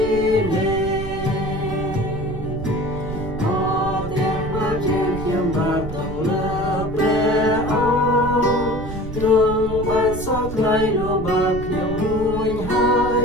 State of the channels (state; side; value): noise; right; rumble, 8 dB below the sound